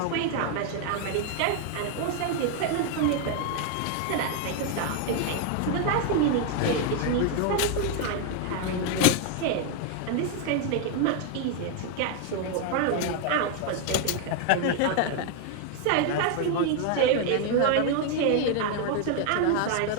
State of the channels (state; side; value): different; both; correlation 0.00